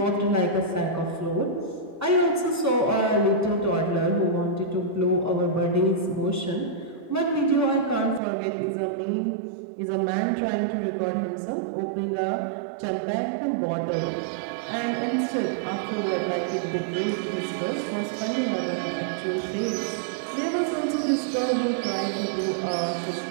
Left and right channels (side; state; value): left; drops out; at 8.2 s